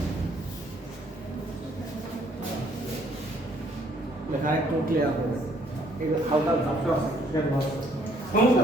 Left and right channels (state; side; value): normal; both; correlation 0.64